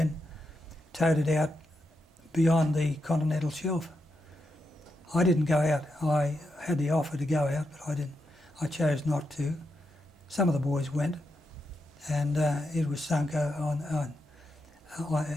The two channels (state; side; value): normal; both; correlation 0.85